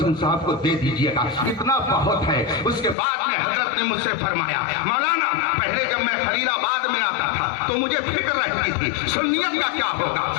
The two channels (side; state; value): right; drops out; at 3.0 s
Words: صاحب کو دے دیجئے گا, اتنا بہت ہے. اس کے بعد میں حضرت نے مجھ سے فرمایا مولانا پہلے جب میں خلیل آباد میں آتا تھا تو مجھے فکر رہتی تھی سنیت کا کیا ہوگا,